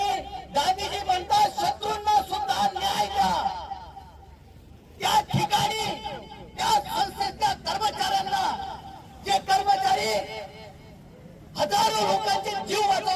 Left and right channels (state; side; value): identical; both; correlation 1.00